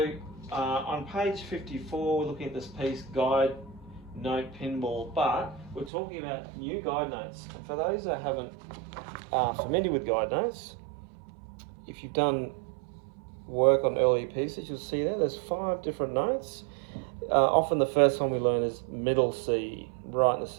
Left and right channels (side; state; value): left; drops out; at 5.9 s